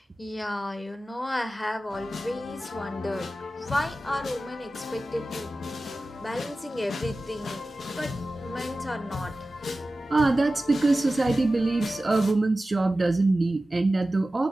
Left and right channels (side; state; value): both; normal; correlation 0.95